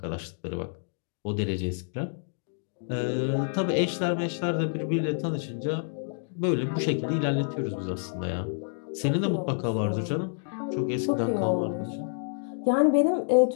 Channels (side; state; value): right; silent; digital silence